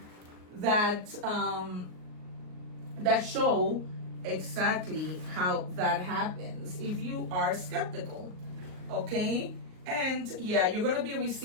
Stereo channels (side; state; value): left; late; 38 ms